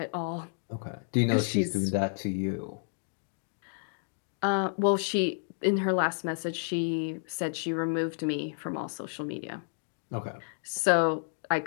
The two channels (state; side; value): silent; right; digital silence